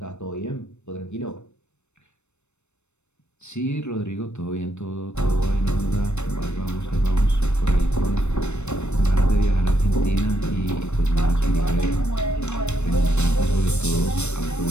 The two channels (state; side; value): late; right; 0.82 ms